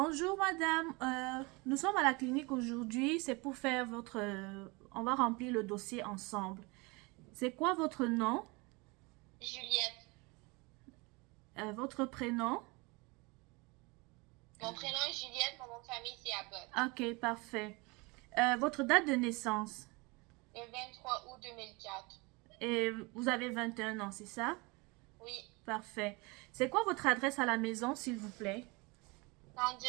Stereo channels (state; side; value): quieter; left; 26.8 dB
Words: madame, nous sommes à la clinique aujourd'hui, c'est pour faire votre... on va remplir le dossier ensemble. C'est quoi votre nom, Juliette. votre prénom? Mon prénom est Juliette, mon nom de famille c'est Abbott. Ok, parfait. Votre date de naissance? Le 23 août 2004. Et vous avez 21 ans, c'est ça? Oui, Parfait. C'est quoi votre adresse à la maison, s'il vous plaît?